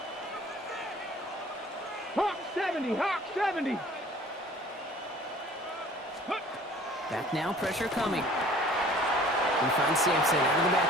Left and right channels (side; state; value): both; normal; correlation 0.50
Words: Hawk 70, Hawk 70. Back now, pressure coming. He finds Sampson out of the